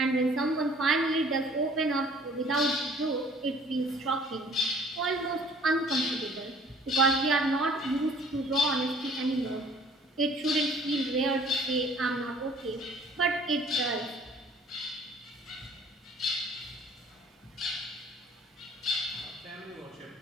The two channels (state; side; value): normal; both; correlation 0.54